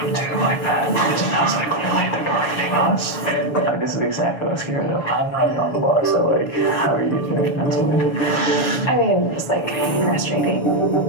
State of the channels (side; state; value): right; late; 7.2 ms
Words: to do like that. It sounds like clearly they're targeting us. Like, this is exactly what I was scared of. I'm not on the block, so like, how are you doing mentally? I mean, just like frustrating.